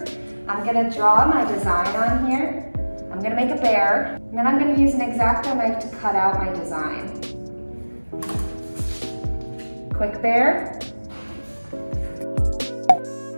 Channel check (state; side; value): inverted; both; correlation -1.00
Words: I'm going to draw my design on here. I'm going to make a bear, and then I'm going to use an X-Acto knife to cut out my design. Quick bear.